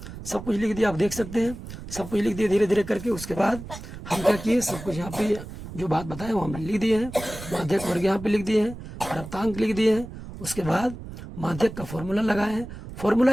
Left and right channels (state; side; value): noise; right; rumble, 12 dB below the sound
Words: सब कुछ लिख दिया, आप देख सकते हैं सब कुछ लिख दिए धीरे धीरे करके। उसके बाद हम क्या किए, सब कुछ यहाँ पे जो बात बताए वो हम लिख दिए हैं, माध्यक वर्ग यहाँ पे लिख दिए हैं, प्राप्तांक लिख दिए हैं। उसके बाद माध्यक का फॉर्मूला लगाए हैं। फॉर्मूला